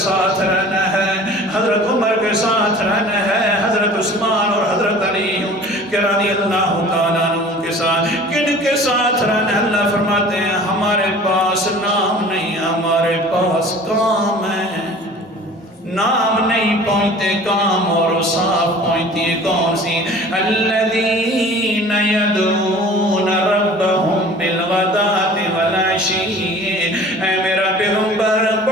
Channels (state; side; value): normal; both; correlation 0.45